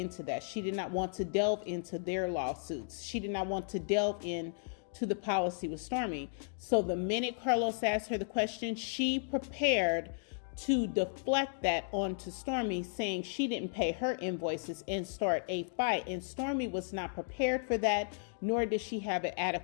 that. She did not want to delve into their lawsuits. She did not want to delve into the policy with Stormi. So the minute Carlos asked her the question, she prepared to deflect that onto Stormi, saying she didn't pay her invoices and start a fight. And Stormi was not prepared for that, nor did she have an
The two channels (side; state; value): right; silent; digital silence